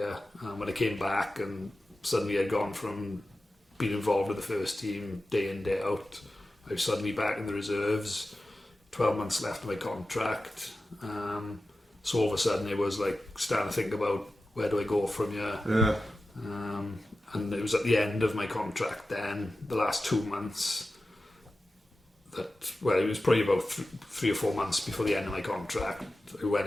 When I came back and suddenly I'd gone from being involved with the first team day in, day out. I was suddenly back in the reserves, 12 months left of my contract. So all of a sudden it was like starting to think about, where do I go from here? Yeah. And it was at the end of my contract then, the last 2 months, it was probably about 3 or 4 months before the end of my contract. I went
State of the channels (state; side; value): normal; both; correlation 0.94